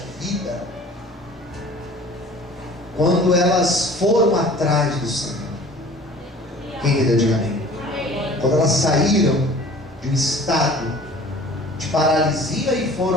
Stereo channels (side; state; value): both; normal; correlation 0.47